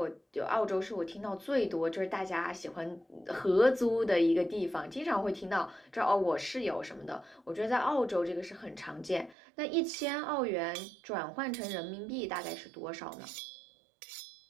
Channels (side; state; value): left; drops out; at 9.3 s